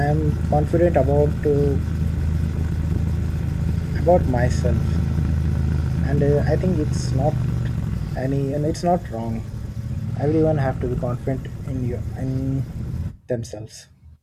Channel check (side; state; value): both; identical; correlation 1.00